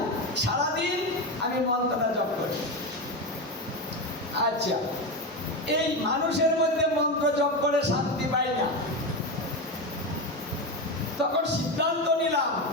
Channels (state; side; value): normal; both; correlation 0.16